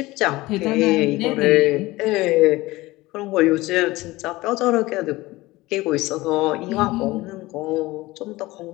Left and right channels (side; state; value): right; quieter; 19.5 dB